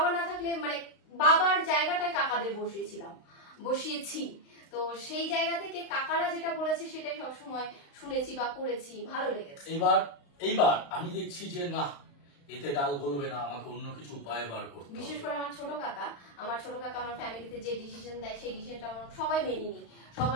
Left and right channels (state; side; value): late; right; 35 ms